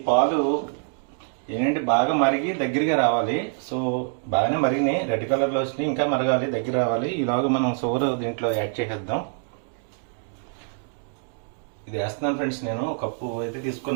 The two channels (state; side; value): silent; left; 62 dB below the other